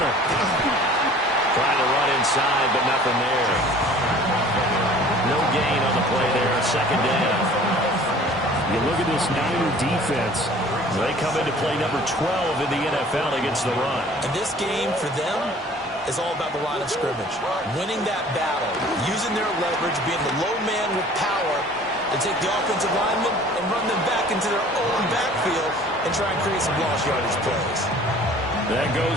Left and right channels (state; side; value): normal; both; correlation 0.49